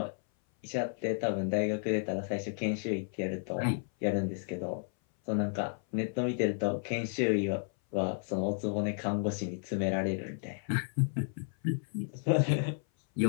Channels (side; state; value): right; silent; 56 dB below the other